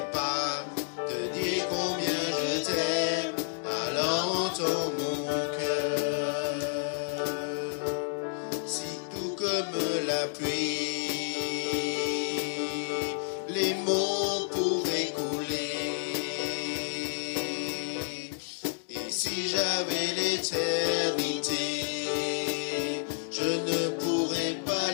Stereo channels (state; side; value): silent; right; digital silence